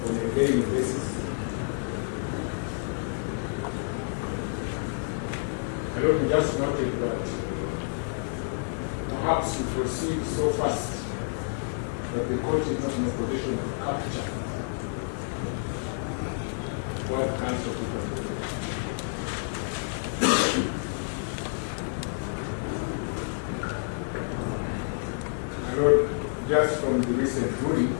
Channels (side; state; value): right; silent; 56 dB below the other